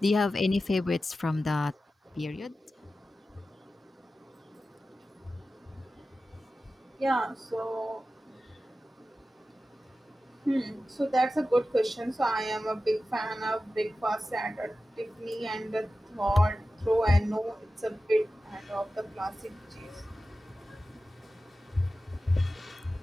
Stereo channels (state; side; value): normal; both; correlation 0.94